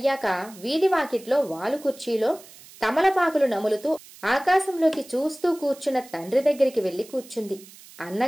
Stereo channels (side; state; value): right; noise; hiss, 21 dB below the sound